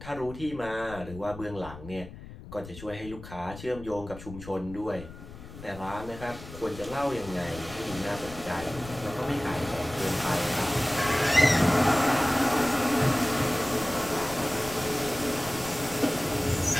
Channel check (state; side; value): noise; left; rumble, 15 dB below the sound